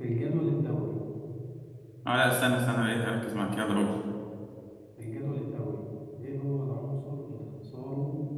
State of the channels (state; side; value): identical; both; correlation 1.00